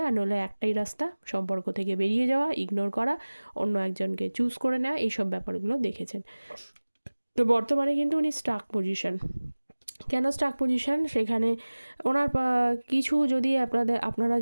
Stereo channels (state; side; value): inverted; both; correlation -1.00